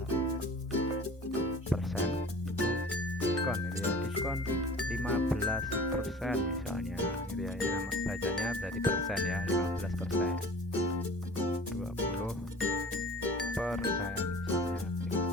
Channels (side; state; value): both; normal; correlation 0.42